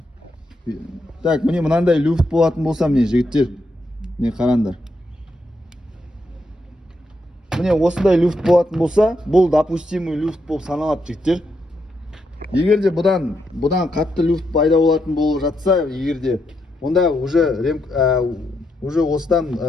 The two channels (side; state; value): both; normal; correlation 0.80